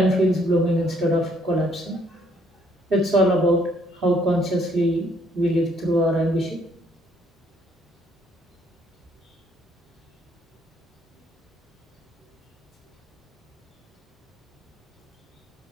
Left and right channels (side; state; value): both; normal; correlation 0.67